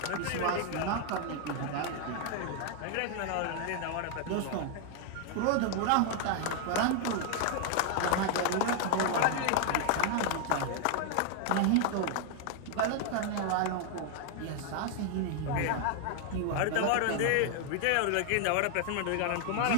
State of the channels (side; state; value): both; different; correlation 0.00